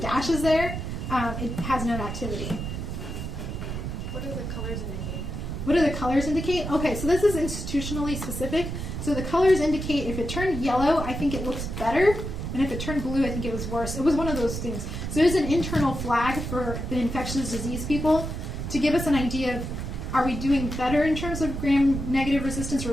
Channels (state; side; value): noise; right; rumble, 5 dB below the sound